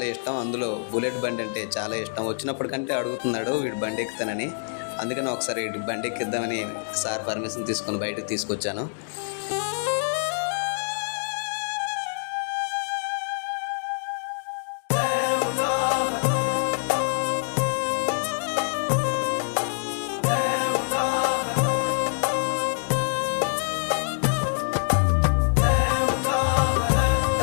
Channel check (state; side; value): silent; right; digital silence